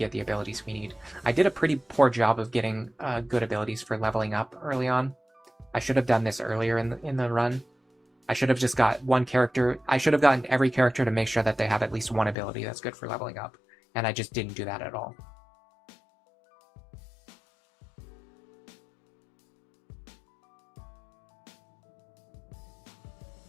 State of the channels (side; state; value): right; drops out; at 12.4 s